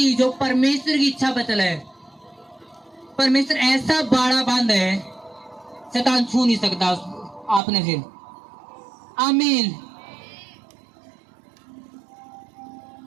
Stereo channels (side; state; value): left; drops out; at 7.6 s